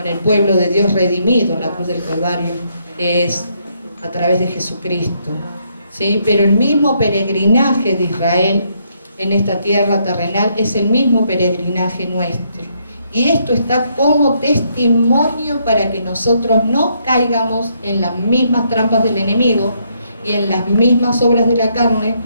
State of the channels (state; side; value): inverted; both; correlation -0.74